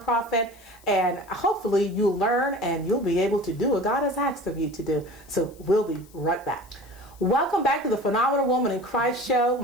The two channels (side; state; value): left; noise; hiss, 27 dB below the sound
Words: and hopefully you'll learn and you'll be able to do what God has asked of you to do. So we'll be right back. Welcome back to the Phenomenal Woman in Christ show.